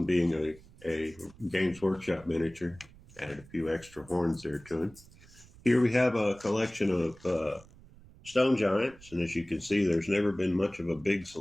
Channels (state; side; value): noise; right; rumble, 23 dB below the sound